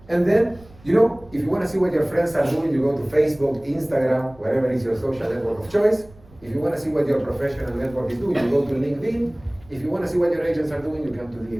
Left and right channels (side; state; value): right; noise; rumble, 24 dB below the sound